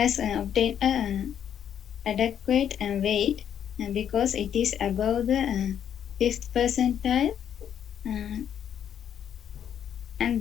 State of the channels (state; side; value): quieter; right; 9.2 dB